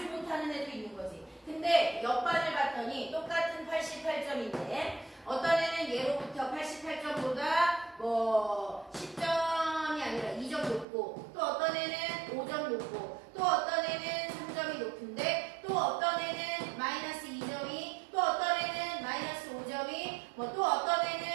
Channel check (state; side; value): drops out; left; at 10.9 s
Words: 못하는 애도 있는 거지. 근데 옆반을 봤더니 똑같은 88점인데 어떤 애는 예로부터 88점보다 뭐 10점이 아니라 2점 높고 또 어떤 애는 5점 높고 또 어떤 애는 3점이 높은데 또 어떤 애는 마이너스 2점이 또 어떤 애는 마이너스 5점이 뭐 또 어떤